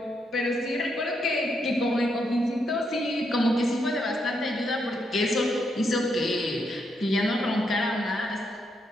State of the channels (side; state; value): both; normal; correlation 0.79